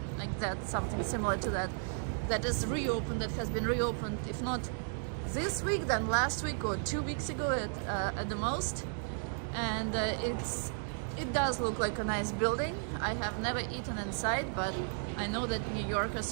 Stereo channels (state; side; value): silent; left; 55 dB below the other